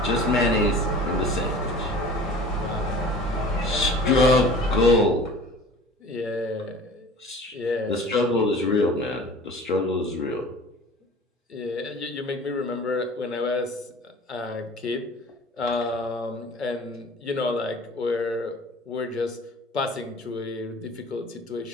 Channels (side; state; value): both; normal; correlation 0.43